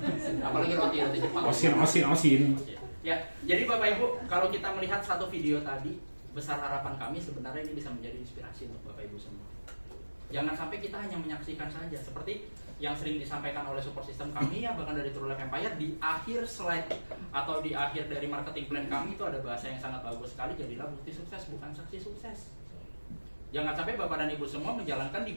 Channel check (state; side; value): inverted; both; correlation -1.00